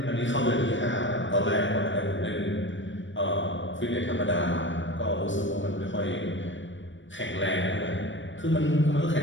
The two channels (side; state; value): right; late; 0.55 ms